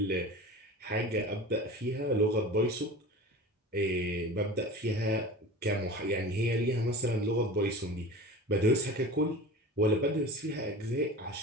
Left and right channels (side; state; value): both; normal; correlation 0.35